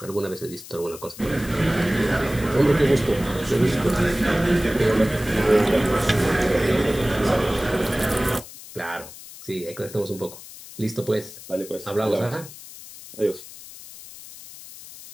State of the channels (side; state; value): left; noise; hiss, 16 dB below the sound